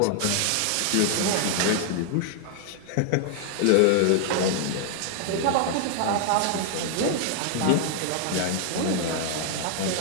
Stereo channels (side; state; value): both; different; correlation 0.00